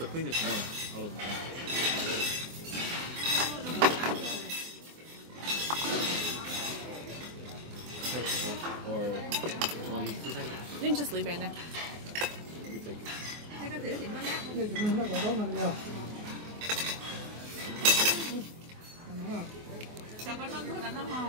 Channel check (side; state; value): left; late; 24 ms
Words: cleanest one out of them. Or want to use 2 seconds? You can just leave it in there. You take it. Thế cái thứ thì nó ngát. Đây chúng nó có đó là nhiều. Sao có nó thôi là nó